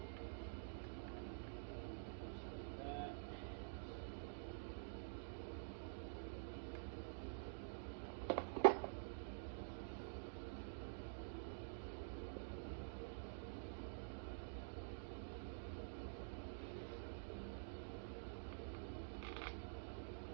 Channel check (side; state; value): left; silent; digital silence